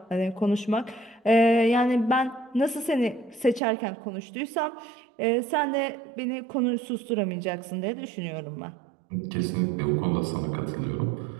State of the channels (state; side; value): drops out; left; at 3.6 s